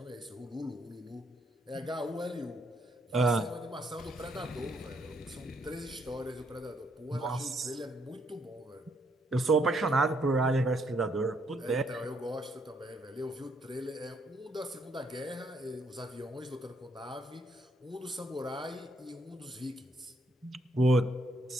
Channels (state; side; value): normal; both; correlation 0.71